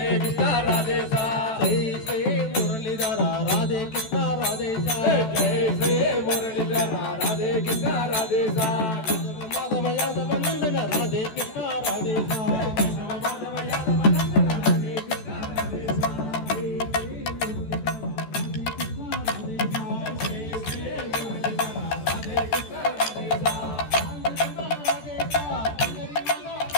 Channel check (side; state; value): right; late; 14 ms